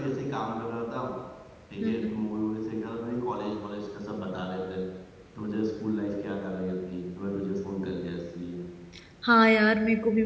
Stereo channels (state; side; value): identical; both; correlation 1.00